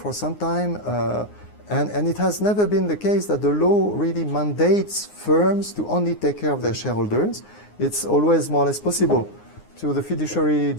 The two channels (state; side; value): late; right; 9.7 ms